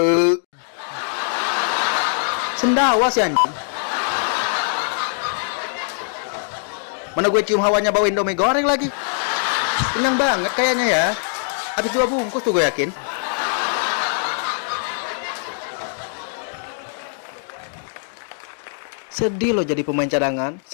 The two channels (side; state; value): right; silent; digital silence